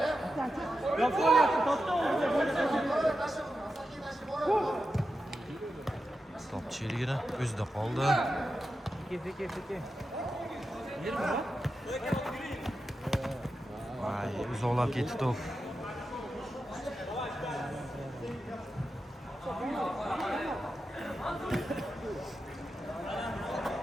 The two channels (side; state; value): both; normal; correlation 0.90